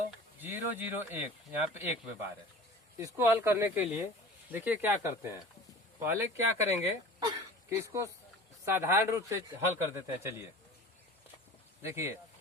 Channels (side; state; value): both; normal; correlation 0.40